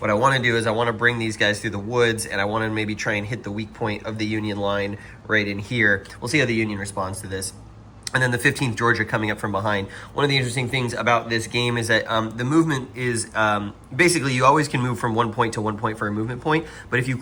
I want to do is I want to bring these guys through the woods, and I want to maybe try and hit the weak point of the Union line right in here. We'll see how the Union responds to this. And then the 15th Georgia coming up from behind. One of the interesting things about this game is that the movement is basically you always can move from one point to one point for a movement point. But if you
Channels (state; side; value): identical; both; correlation 1.00